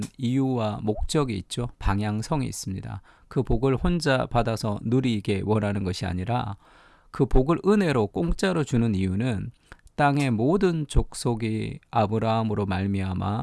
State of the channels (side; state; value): both; identical; correlation 1.00